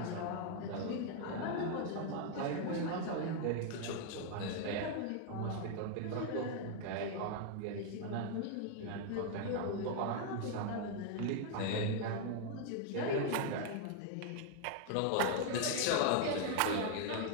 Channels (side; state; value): both; different; correlation 0.00